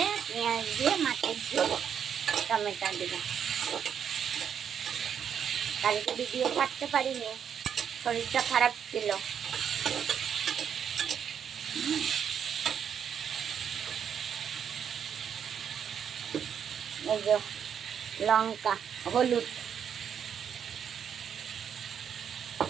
পেঁয়াজ দিয়ে মাছের ঝোল টমেটো দিয়ে। কালকে ভিডিও ছাড়তে পারিনি, শরীরটা খারাপ ছিল। এই যে লঙ্কা, হলুদ,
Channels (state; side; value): quieter; left; 8.1 dB